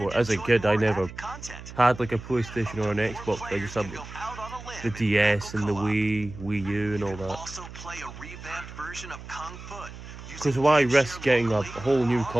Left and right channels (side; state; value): right; noise; hum, 14 dB below the sound